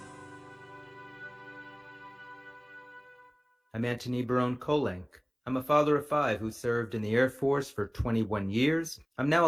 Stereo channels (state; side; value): identical; both; correlation 1.00